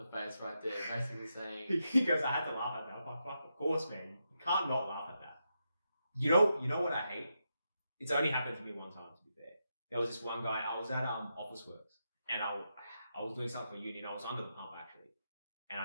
face right there. Basically saying, He goes, I had to laugh at that. I'm like, fuck, of course, man. You can't not laugh at that. You know what I hate? It's only happened to me one time, to be fair. There was this one guy, I was at Office Works, and I was doing something for uni, and I was under the pump, actually. And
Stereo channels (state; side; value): inverted; both; correlation -0.85